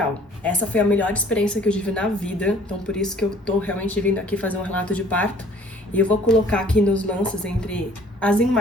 Essa foi a melhor experiência que eu tive na vida, então por isso que eu tô realmente vindo aqui fazer um relato de parto. E eu vou colocar aqui nos lances entre as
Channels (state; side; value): normal; both; correlation 0.54